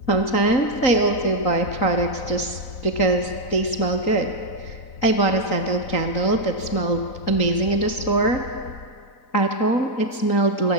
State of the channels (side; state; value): right; late; 3.8 ms